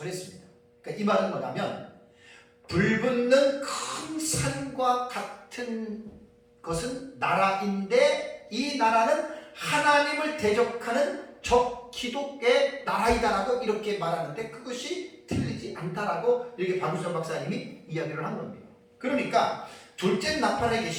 했습니다. 그러니까 이 말은 뭐냐면, 불붙는 큰 산과 같은 것은 나라인데, 이 나라는 하나님을 대적하는 적기독의 나라이다라고 이렇게 말하는데, 그것이 틀리지 않다라고 이렇게 박유선 박사님이 이야기를 한 겁니다. 그러니까 둘째 나팔의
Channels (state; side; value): identical; both; correlation 1.00